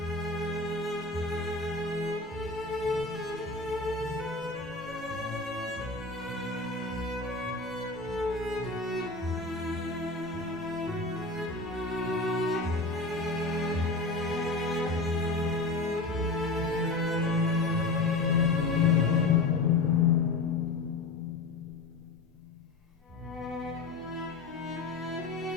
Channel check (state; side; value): quieter; right; 3.4 dB